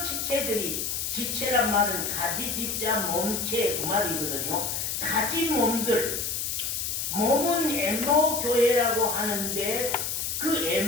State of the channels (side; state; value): left; noise; hiss, 2 dB below the sound